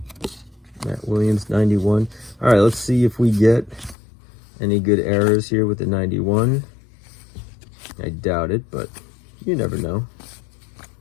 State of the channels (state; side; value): drops out; right; at 4.0 s